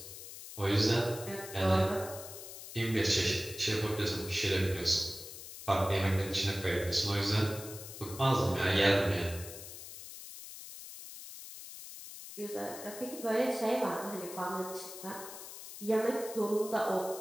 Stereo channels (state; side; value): noise; left; hiss, 12 dB below the sound